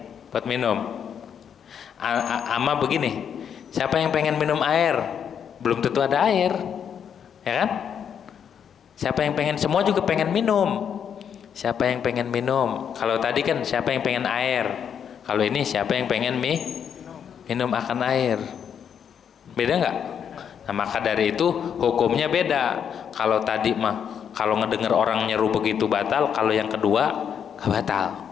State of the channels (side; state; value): right; quieter; 8.0 dB